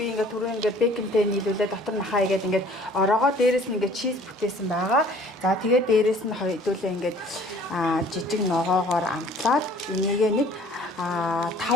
ингээ түрүү ингээ бэконтэй нийлүүлээ дотор махаа игээд ингээ ороогоо дээрэс нь ингээ чиз бүтээсэн байгаа. За тэгээд дээрэс нь хоёулаа ингээ жижиг ногоогоор амтлаад энийгээ нэг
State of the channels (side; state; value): both; normal; correlation 0.53